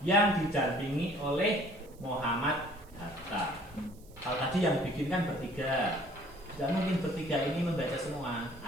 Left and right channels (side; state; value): right; noise; hiss, 27 dB below the sound